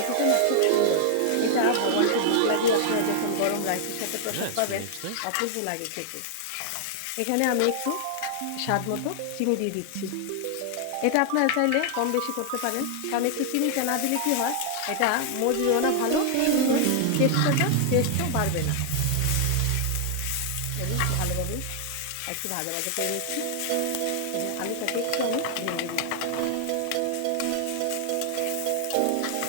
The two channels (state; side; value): different; both; correlation 0.00